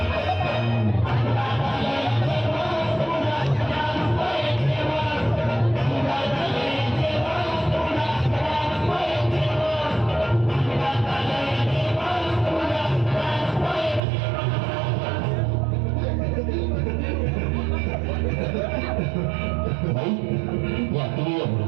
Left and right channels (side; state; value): left; drops out; at 14.0 s